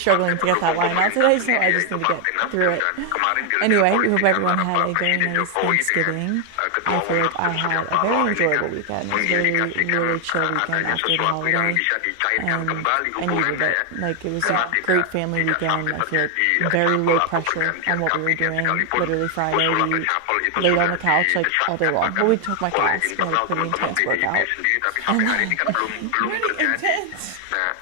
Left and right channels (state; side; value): different; both; correlation 0.00